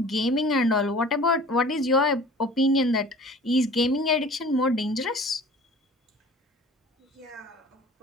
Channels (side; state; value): both; normal; correlation 0.45